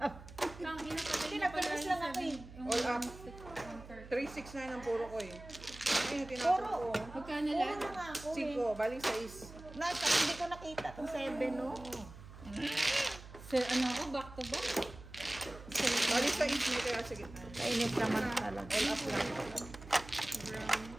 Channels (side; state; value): right; noise; hum, 16 dB below the sound